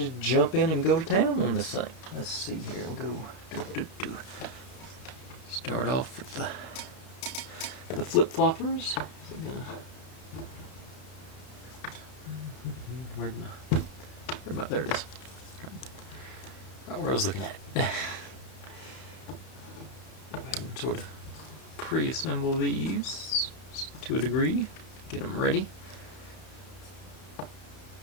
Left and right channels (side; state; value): right; late; 31 ms